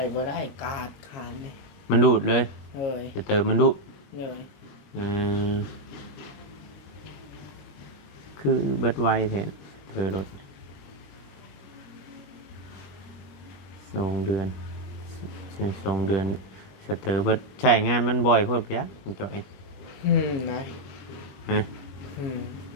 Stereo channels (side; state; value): right; late; 21 ms